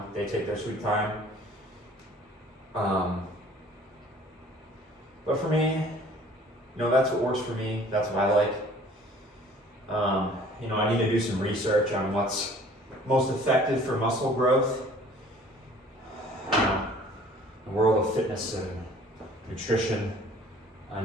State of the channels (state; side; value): normal; both; correlation 0.52